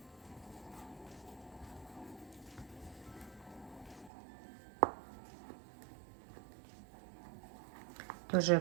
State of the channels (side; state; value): left; drops out; at 4.1 s